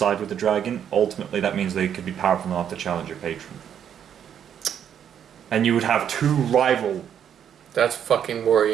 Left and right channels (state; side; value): quieter; left; 8.9 dB